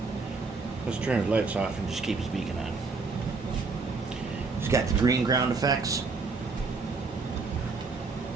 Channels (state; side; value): quieter; left; 4.3 dB